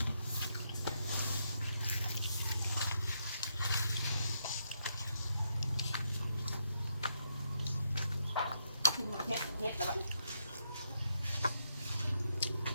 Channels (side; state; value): both; inverted; correlation -0.78